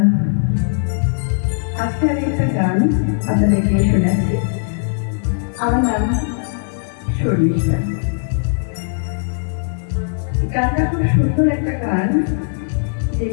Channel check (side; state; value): right; silent; digital silence